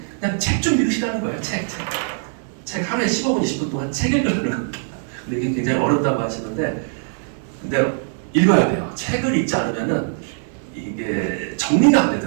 그냥 책 좀 읽으시라는 거예요. 책 하루에 15분, 20분 동안 책 읽으라는 겁니다. 근데 이게 굉장히 어렵다고 하시는데 근데 읽어야 돼요. 책을 읽지 않으면은 이게 정리가 안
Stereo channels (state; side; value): silent; left; 65 dB below the other